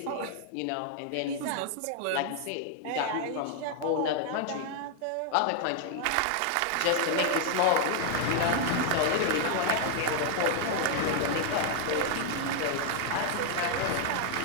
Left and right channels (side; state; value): both; different; correlation 0.00